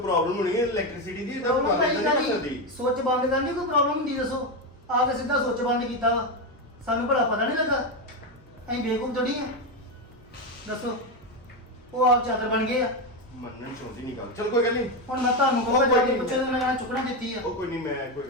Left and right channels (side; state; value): right; noise; hum, 29 dB below the sound